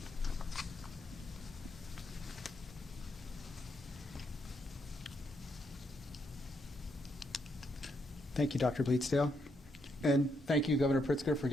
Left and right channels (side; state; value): both; normal; correlation 0.78